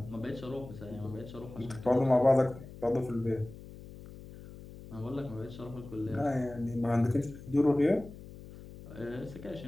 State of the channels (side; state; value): left; noise; hum, 15 dB below the sound